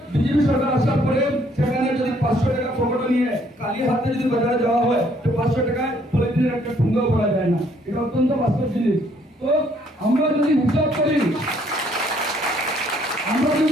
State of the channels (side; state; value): both; normal; correlation 0.65